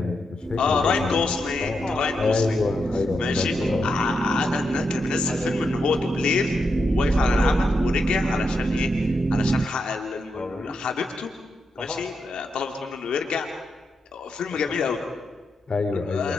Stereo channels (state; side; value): normal; both; correlation 0.84